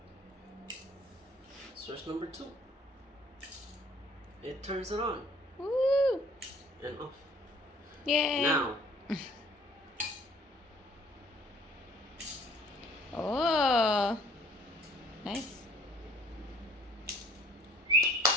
Switch number 2. It turns it on Woo! and off. Yay! Now, Oh, nice.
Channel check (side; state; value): both; normal; correlation 0.55